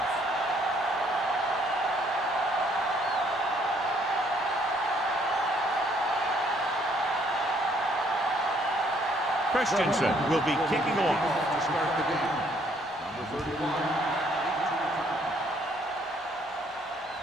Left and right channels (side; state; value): both; normal; correlation 0.65